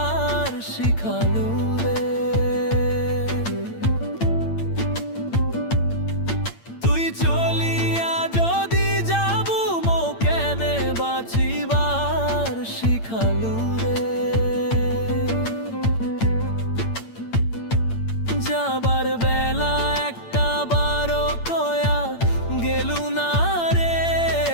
শিখালু রে। তুই চলিয়া যদি যাবু মো কেনে বাঁচিবার শিখালু রে। যাবার বেলা একটা বারো কয়া গেলু না রে।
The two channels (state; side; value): late; right; 8.8 ms